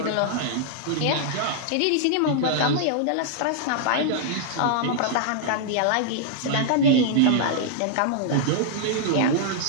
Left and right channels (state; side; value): different; both; correlation -0.01